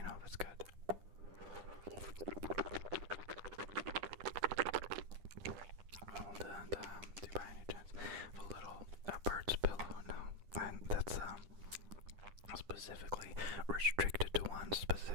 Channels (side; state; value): left; late; 10 ms